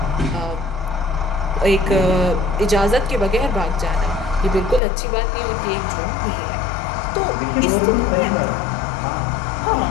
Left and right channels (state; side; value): drops out; right; at 4.8 s